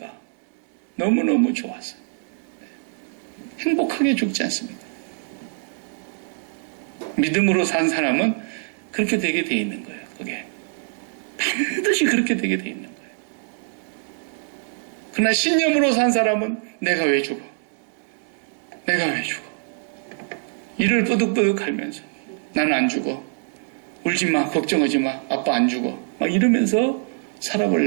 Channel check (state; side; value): silent; left; 60 dB below the other